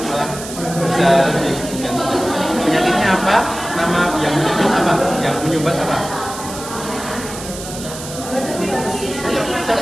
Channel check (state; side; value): noise; right; hiss, 11 dB below the sound